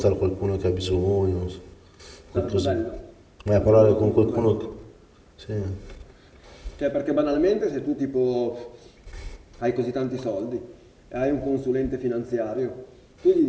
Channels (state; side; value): identical; both; correlation 1.00